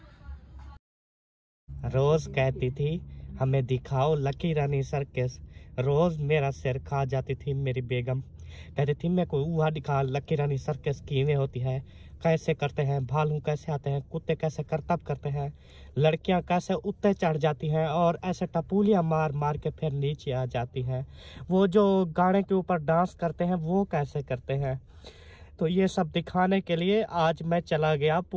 रोज कहती थी हमें दिखाओ लकी रानी सर्कस। रोज मेरा सिर खा जाती थी मेरी बेगम। कहती थी मेरे को वहाँ दिखा लकी रानी सर्कस किਵੇਂ होती है, कैसे करते हैं, भालू कैसे आते हैं, कुत्ते कैसे करतब करते हैं, लड़कियां कैसे उत्ते चढ़ जाती हैं और ऐसे टपूलियां मार मार के फिर नीचे आ जाती हैं, वो जो गाने के ऊपर डांस करते हैं वो कैसे करते हैं। तो ये सब दिखाने के लिए आज मैं चला गया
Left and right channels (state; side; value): identical; both; correlation 1.00